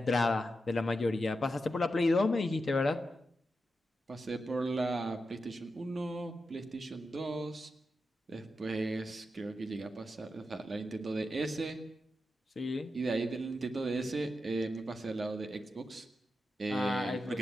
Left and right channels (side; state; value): both; normal; correlation 0.88